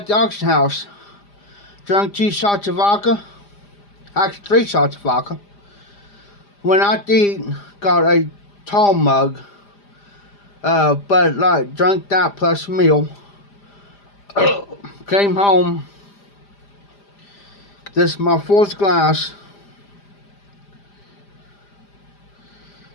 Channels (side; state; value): right; late; 5.0 ms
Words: the auction house. Drank 2 shots of vodka. Actually, 3 shots of vodka. Went out to eat, got a tall mug. But like, drank that plus a meal. Came home. This is my 4th glass.